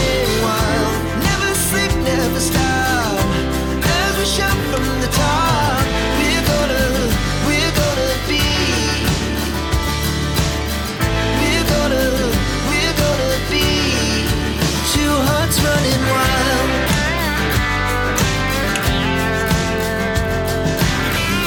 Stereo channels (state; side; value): identical; both; correlation 1.00